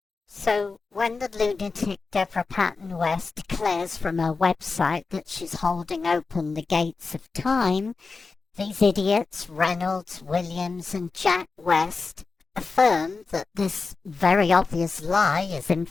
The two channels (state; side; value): quieter; right; 4.3 dB